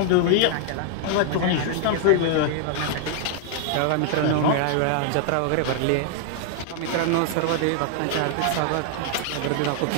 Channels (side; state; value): both; different; correlation 0.00